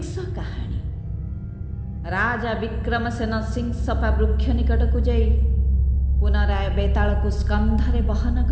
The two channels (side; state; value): both; identical; correlation 1.00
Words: କାହାଣୀ। ରାଜା ବିକ୍ରମସେନ ସିଂସପା ବୃକ୍ଷ ନିକଟକୁ ଯାଇ ପୁନରାୟ ବେତାଳକୁ ସ୍କନ୍ଧରେ ବହନ